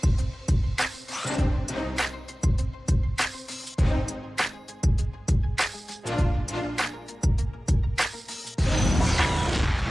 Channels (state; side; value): normal; both; correlation 0.97